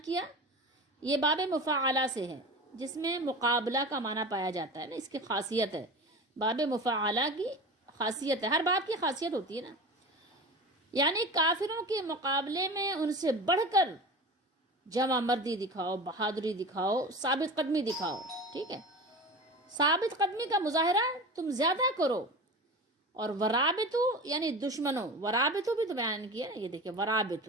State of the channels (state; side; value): normal; both; correlation 0.32